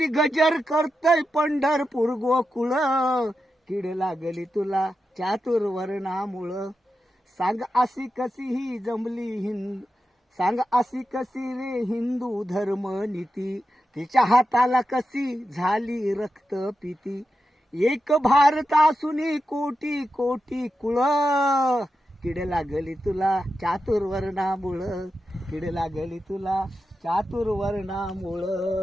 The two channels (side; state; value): both; normal; correlation 0.89